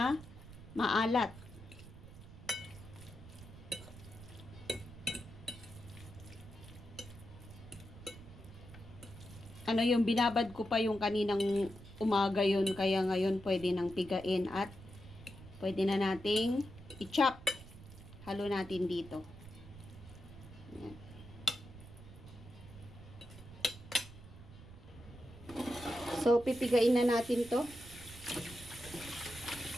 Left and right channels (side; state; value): right; noise; rumble, 16 dB below the sound